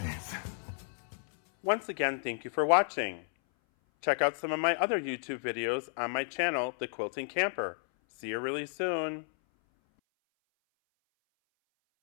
Once again, thank you for watching. Check out some of my other YouTube videos on my channel, The Quilting Camper. See you really soon.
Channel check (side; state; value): right; silent; 56 dB below the other